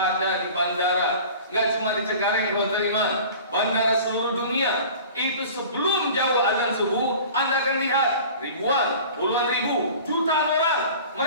ada di bandara. Nggak cuma di Cengkareng, bandara seluruh dunia. Itu sebelum jauh azan subuh, Anda akan lihat ribuan, puluhan ribu, jutaan orang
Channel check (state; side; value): inverted; both; correlation -0.42